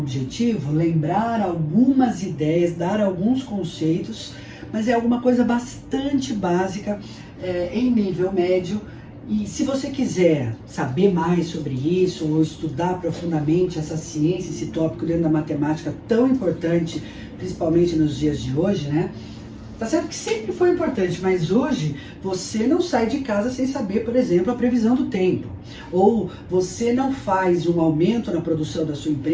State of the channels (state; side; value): identical; both; correlation 1.00